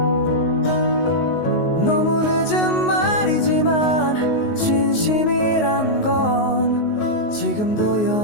너무 늦은 말이지만 진심이란 건 지금도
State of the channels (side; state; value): right; late; 19 ms